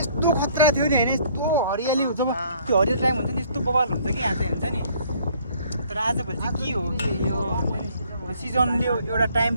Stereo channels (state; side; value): inverted; both; correlation -0.60